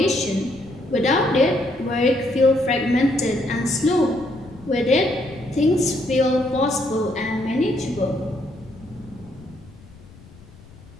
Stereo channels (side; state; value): left; noise; rumble, 22 dB below the sound